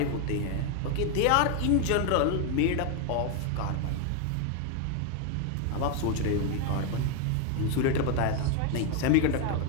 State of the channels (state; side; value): different; both; correlation 0.01